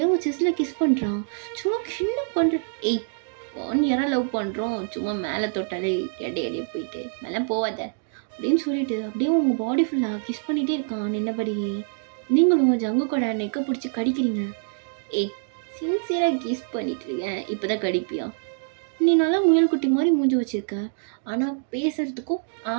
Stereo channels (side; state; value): left; silent; digital silence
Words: அவங்க செஸ்ஸில் கிஸ் பண்ணுறான். சும்மா என்ன பண்ணுற? ஏய் 1 இயராக லவ் பண்ணுறோம், சும்மா மேலே தொட்டாலே எடையே போயிட்டு மேலே போவாத அப்படின்னு சொல்லிட்டு அப்படியே உங்கள் பாடி ஃபுல்லாக கிஸ் பண்ணிகிட்டே இருக்கான் நின்னபடியே. நீங்களும் உங்கள் ஜங்கு கூட நெக்கை பிடிச்சி கடிக்கிறீங்க. ஏய் சின்சியராக கிஸ் பண்ணிட்டு இருக்கேன், இப்போ தான் கடிப்பியா? நீ நல்லா முயல் குட்டி மாதிரி மூஞ்சி வச்சுருக்க, ஆனால் பேசுகிறதுக்கும்